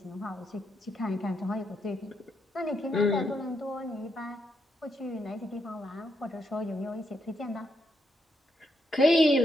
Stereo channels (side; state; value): both; normal; correlation 0.79